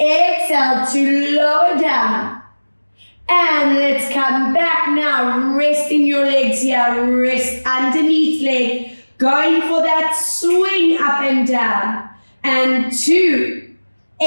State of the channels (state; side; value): inverted; both; correlation -1.00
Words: to lower down. And let's come back now. Resting your legs here. Rest underneath leg. Going for that swing up and down. And 2.